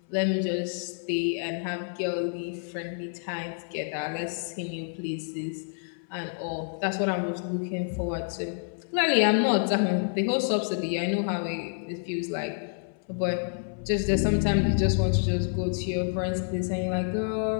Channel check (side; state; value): right; silent; 59 dB below the other